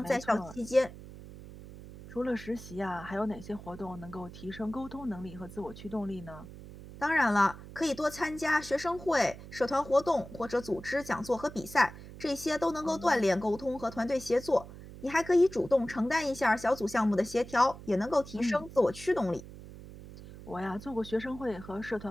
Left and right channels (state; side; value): noise; right; hum, 15 dB below the sound